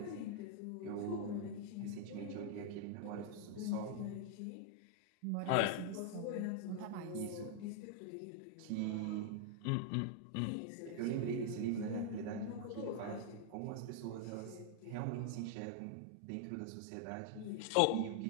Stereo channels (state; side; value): different; both; correlation 0.00